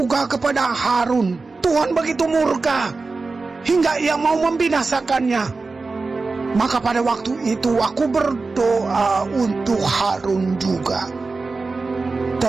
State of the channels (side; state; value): left; quieter; 3.9 dB